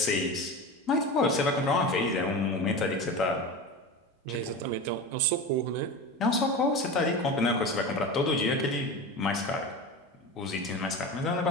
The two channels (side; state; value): both; normal; correlation 0.27